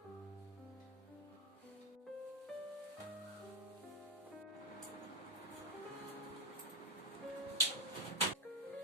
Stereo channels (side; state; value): both; normal; correlation 0.05